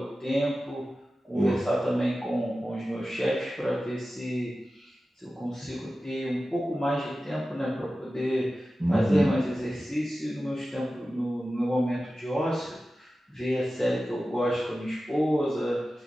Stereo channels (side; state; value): both; normal; correlation 0.94